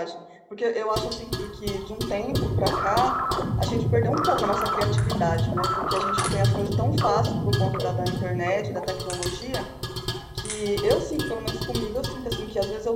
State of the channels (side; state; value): both; identical; correlation 1.00